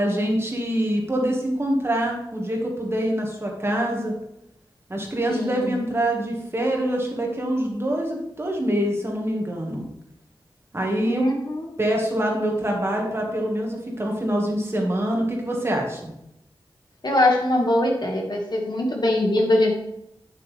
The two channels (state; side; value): normal; both; correlation 0.82